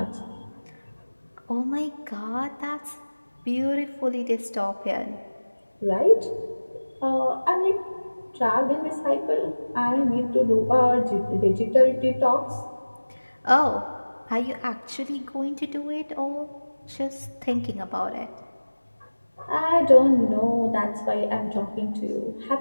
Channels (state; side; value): inverted; both; correlation -1.00